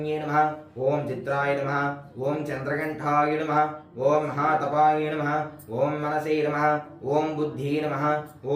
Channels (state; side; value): identical; both; correlation 1.00